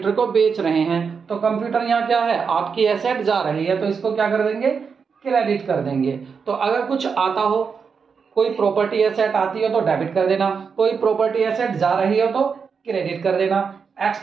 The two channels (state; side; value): quieter; left; 5.8 dB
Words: को बेच रहे हैं, तो कंप्यूटर यहाँ क्या है, आपकी एसेट जा रही है, तो इसको क्या कर देंगे, क्रेडिट कर देंगे। तो अगर कुछ आता हो, कोई प्रॉपर्टी एसेट आती हो तो डेबिट कर देना, कोई प्रॉपर्टी एसेट जा रही हो तो क्रेडिट कर देना।